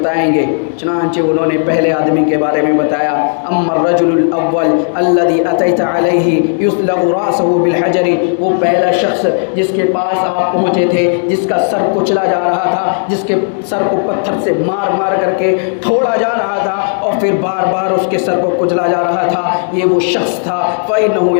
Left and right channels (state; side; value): silent; right; digital silence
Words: گے۔ چنانچہ انہوں نے پہلے آدمی کے بارے میں بتایا، اما الرجل الاول الذي اتيت عليه يسلغ راسه بالحجر، وہ پہلا شخص جس کے پاس آپ پہنچے تھے، جس کا سر کچلا جا رہا تھا، جس کے سر کو پتھر سے مار مار کر کے پھوڑا جا رہا تھا اور پھر بار بار اس کے سر کو کچلا جا رہا تھا، یہ وہ شخص تھا فإنه